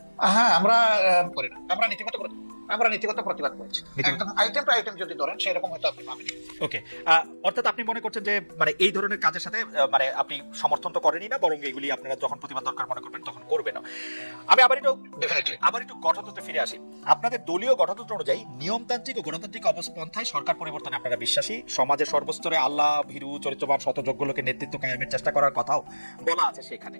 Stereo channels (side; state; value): both; inverted; correlation -1.00